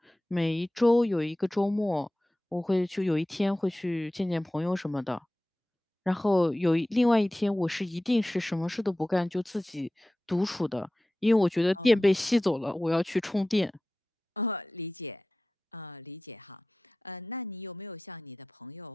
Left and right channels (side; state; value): both; normal; correlation 0.95